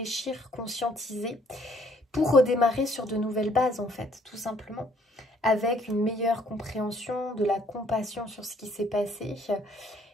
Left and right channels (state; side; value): normal; both; correlation 0.63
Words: conscientiser pour redémarrer sur de nouvelles bases en fait, tout simplement, avec une meilleure compréhension, de la compassion sur ce qui s'est passé